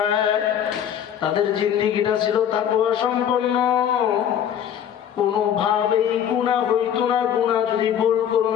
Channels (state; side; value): quieter; right; 9.3 dB